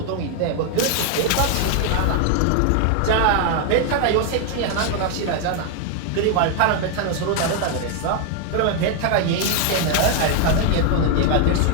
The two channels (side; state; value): both; different; correlation 0.00